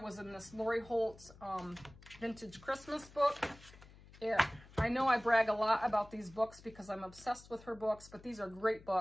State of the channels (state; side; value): noise; left; hum, 21 dB below the sound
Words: in this Lori Holt's vintage Christmas book. I know I brag a lot about these books because I'm obsessed with her books, but these are great